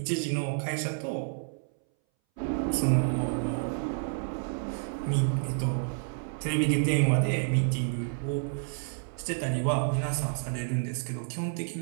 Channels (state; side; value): silent; left; 58 dB below the other